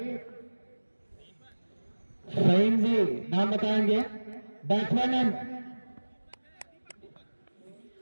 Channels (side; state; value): both; inverted; correlation -1.00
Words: फहीम जी, नाम बताएंगे। बैट्समैन है